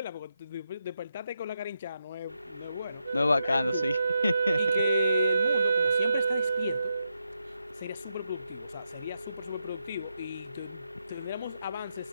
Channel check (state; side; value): inverted; both; correlation -0.84